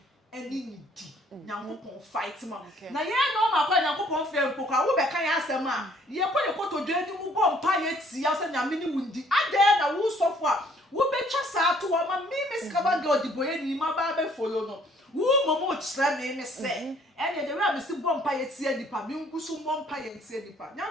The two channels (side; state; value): both; normal; correlation 0.61